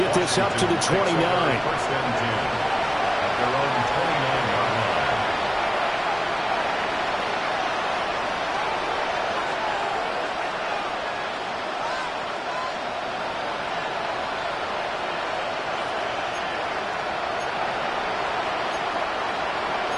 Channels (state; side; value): identical; both; correlation 1.00